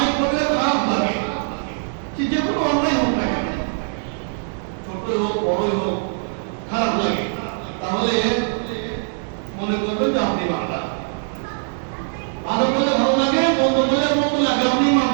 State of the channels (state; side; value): silent; left; digital silence